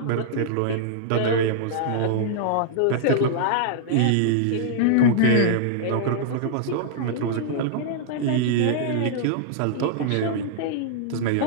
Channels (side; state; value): both; different; correlation -0.01